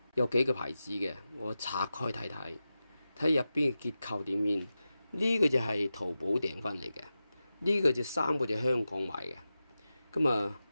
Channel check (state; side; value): inverted; both; correlation -0.93